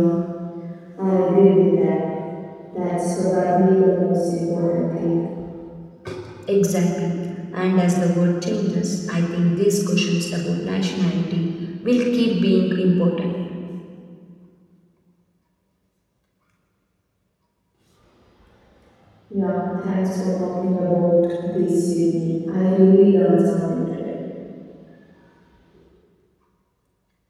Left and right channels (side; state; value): both; identical; correlation 1.00